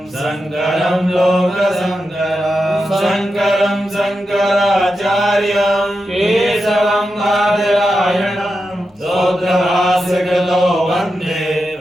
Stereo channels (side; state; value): both; normal; correlation 0.89